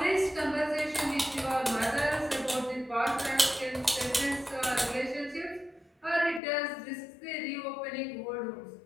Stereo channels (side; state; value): right; drops out; at 6.4 s